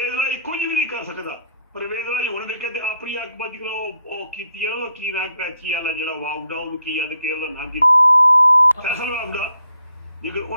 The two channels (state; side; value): inverted; both; correlation -0.74